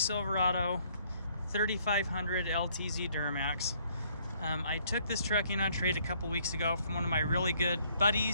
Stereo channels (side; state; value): both; inverted; correlation -0.64